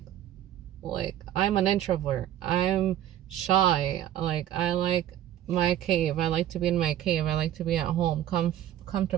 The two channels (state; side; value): quieter; left; 12.0 dB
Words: I'm an introvert, I'm shy, like I like my cave, I like to be in my cave, I like to be at home,